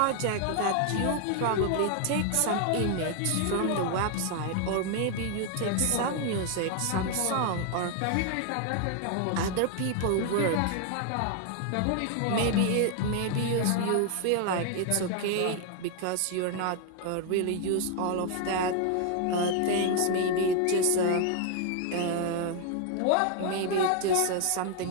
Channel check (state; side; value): different; both; correlation 0.00